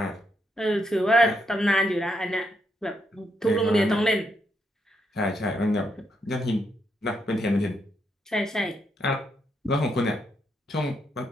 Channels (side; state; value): both; normal; correlation 0.79